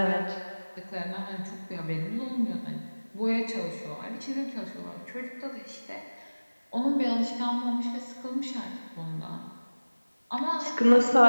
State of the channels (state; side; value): inverted; both; correlation -1.00